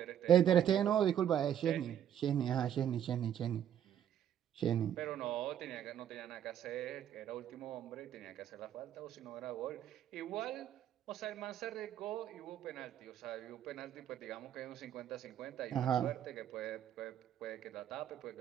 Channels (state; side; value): quieter; left; 10.1 dB